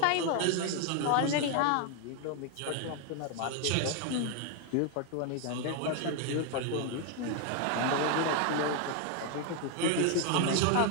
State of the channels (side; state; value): both; different; correlation 0.00